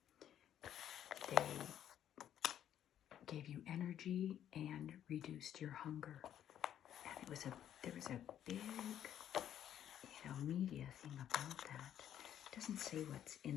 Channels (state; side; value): quieter; right; 10.5 dB